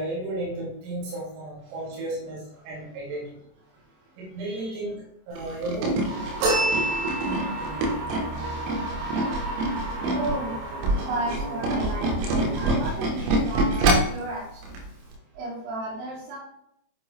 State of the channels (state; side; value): late; left; 27 ms